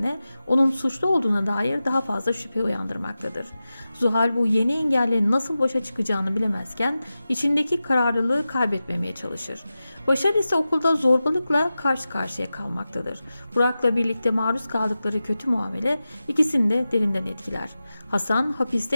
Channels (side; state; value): both; inverted; correlation -0.94